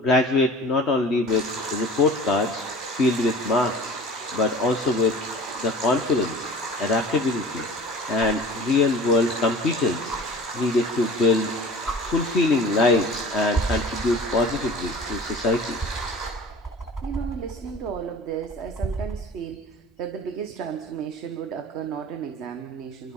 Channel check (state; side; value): normal; both; correlation 0.41